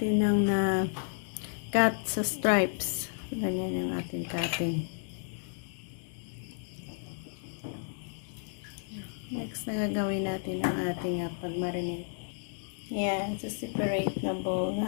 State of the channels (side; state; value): right; silent; digital silence